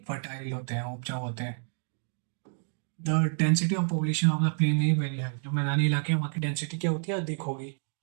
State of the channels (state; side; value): silent; left; 58 dB below the other